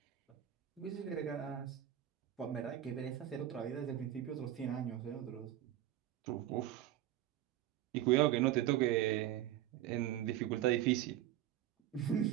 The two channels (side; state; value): left; quieter; 12.5 dB